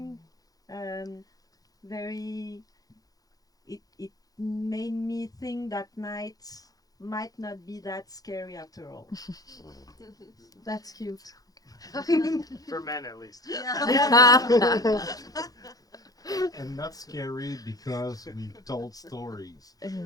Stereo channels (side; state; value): right; late; 0.18 ms